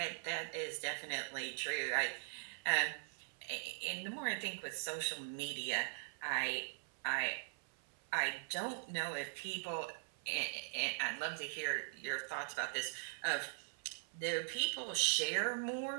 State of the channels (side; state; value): left; silent; 50 dB below the other